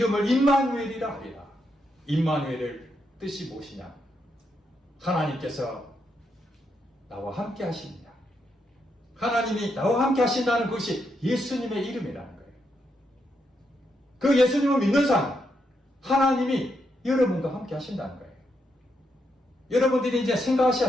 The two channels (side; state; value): both; normal; correlation 0.81